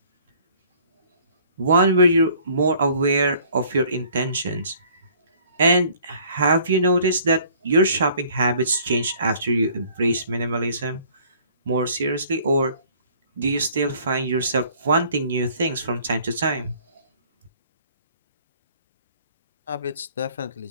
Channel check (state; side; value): inverted; both; correlation -0.56